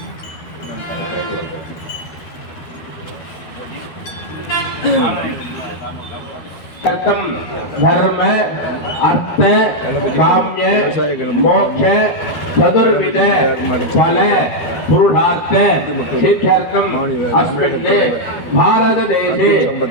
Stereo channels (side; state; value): right; late; 12 ms